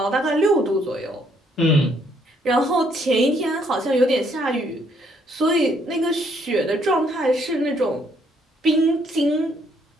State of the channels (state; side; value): normal; both; correlation 0.69